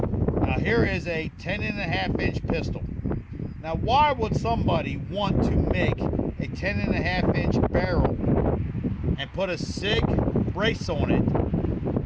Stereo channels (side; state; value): both; identical; correlation 1.00